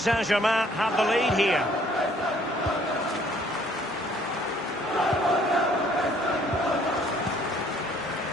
have the lead here.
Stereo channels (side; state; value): both; normal; correlation 0.61